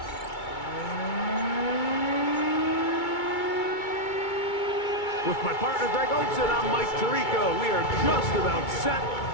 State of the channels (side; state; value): right; late; 2.2 ms